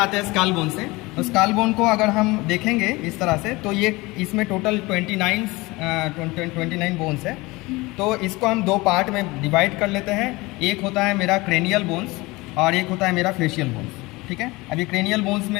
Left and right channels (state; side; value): quieter; right; 22.5 dB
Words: हैं स्काल बोन से। तो स्काल बोन को अगर हम देखेंगे इस तरह से तो ये इसमें टोटल 29 बोन्स है। तो इसको हम दो पार्ट में डिवाइड कर लेते हैं। एक होता है मेरा क्रेनियल बोन्स और एक होता है मेरा फेशियल बोन्स, ठीक है। अभी क्रेनियल बोन्स